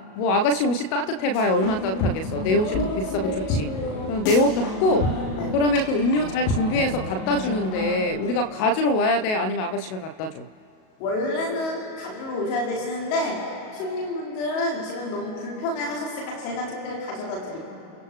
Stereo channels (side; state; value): right; late; 37 ms